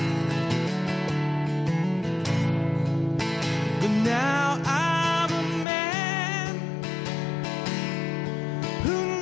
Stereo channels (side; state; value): right; drops out; at 5.7 s